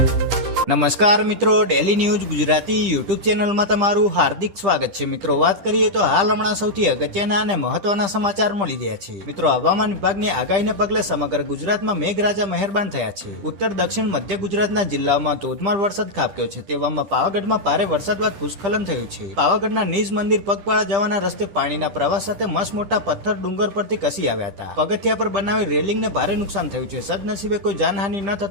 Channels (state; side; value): late; left; 10 ms